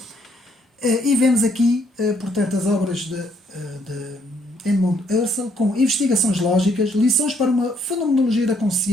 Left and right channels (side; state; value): both; normal; correlation 0.69